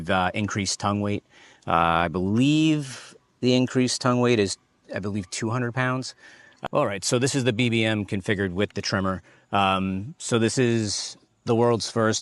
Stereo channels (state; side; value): identical; both; correlation 1.00